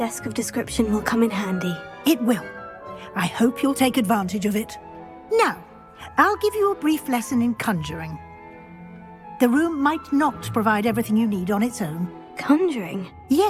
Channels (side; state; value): both; identical; correlation 1.00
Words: of description will come in handy. It will. I hope you'll take advantage of it. Now, I'll give you a brief lesson in conjuring. The room might not provide everything you need on its own. Conjuring?